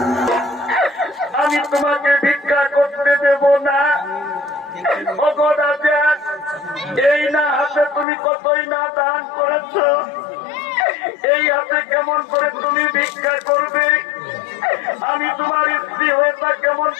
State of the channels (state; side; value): drops out; right; at 8.1 s